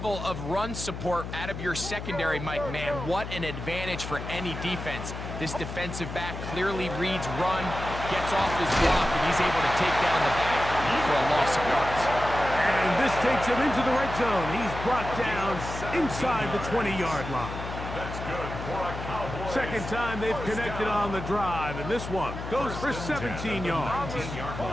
of run support out of your secondary, Mike, man, what an advantage for any defense. This defensive back clearly reads run, gets off his block, and he's able to take down the back for a loss of yards. And this takes him into the red zone. He's brought down inside the 20-yard line. Second time they've connected on the drive, and this one goes for 17 yards.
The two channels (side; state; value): left; noise; hum, 8 dB below the sound